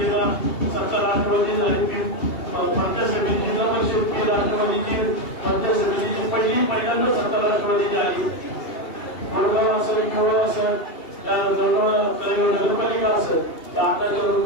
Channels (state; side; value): late; right; 2.8 ms